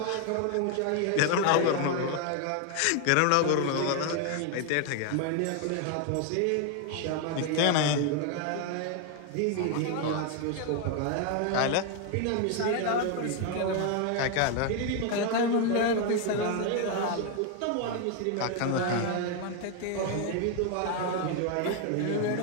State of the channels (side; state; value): both; different; correlation 0.01